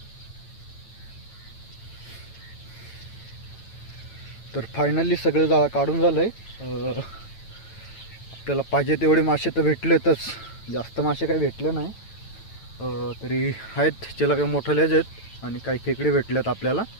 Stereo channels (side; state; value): right; late; 9.0 ms